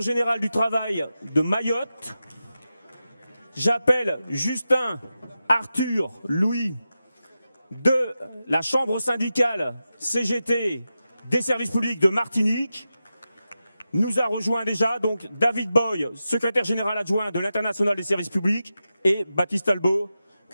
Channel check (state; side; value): inverted; both; correlation -0.91